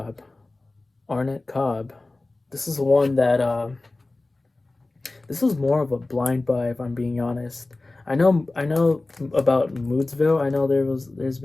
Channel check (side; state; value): right; quieter; 3.1 dB